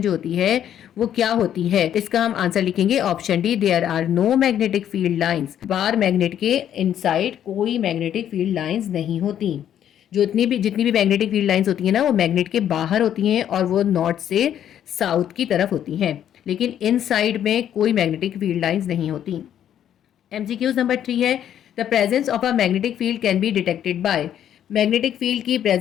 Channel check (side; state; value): right; quieter; 10.2 dB